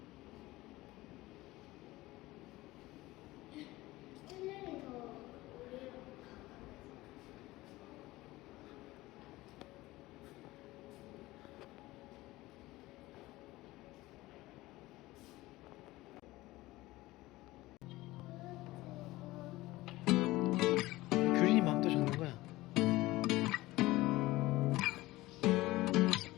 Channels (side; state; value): right; quieter; 18.6 dB